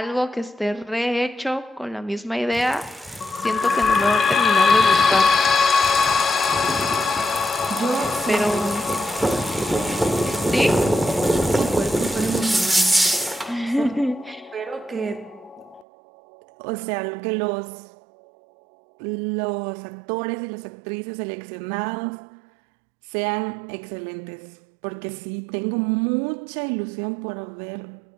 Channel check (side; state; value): left; drops out; at 15.9 s